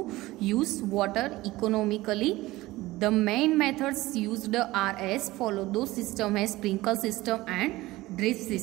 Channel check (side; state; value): left; quieter; 18.5 dB